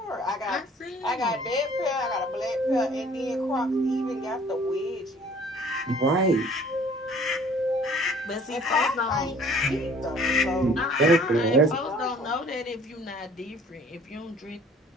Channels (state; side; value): normal; both; correlation 0.53